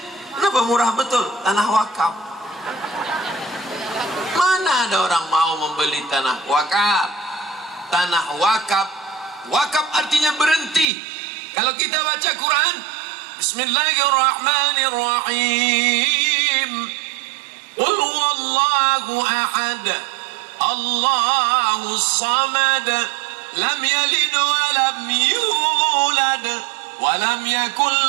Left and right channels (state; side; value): drops out; left; at 10.9 s